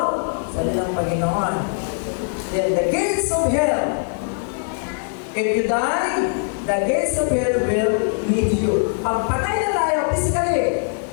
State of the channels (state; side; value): silent; right; digital silence